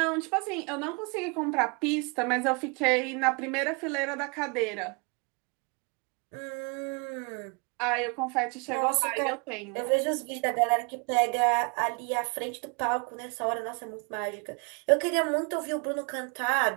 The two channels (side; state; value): left; quieter; 33.0 dB